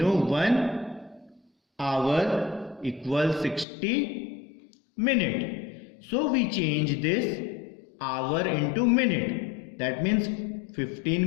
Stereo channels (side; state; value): right; drops out; at 3.7 s